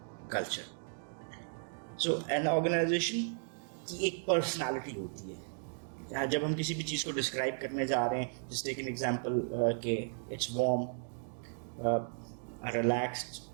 culture. So an organisation की एक पर्सनालिटी होती है। जब हम किसी भी चीज़ को डिस्क्राइब करने जा रहे हैं, जस्ट टेक एन एग्जांपल के it's warm, relaxed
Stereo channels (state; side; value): silent; left; digital silence